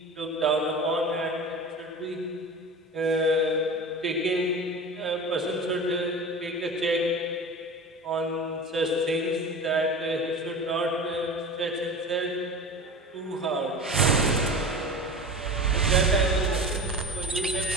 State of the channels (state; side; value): normal; both; correlation 0.33